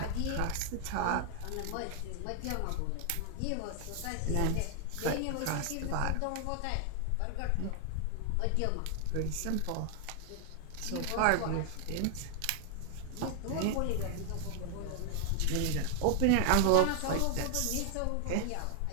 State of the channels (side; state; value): both; different; correlation 0.00